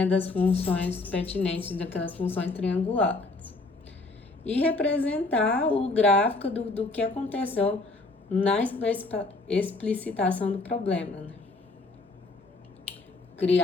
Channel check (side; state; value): right; quieter; 3.3 dB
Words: das funções pertinentes daquelas funções triangulares. E representar o gráfico do que aconteceu na explicitação do problema. Né?